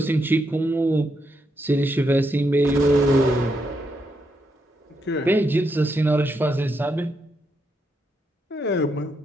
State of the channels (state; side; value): normal; both; correlation 0.80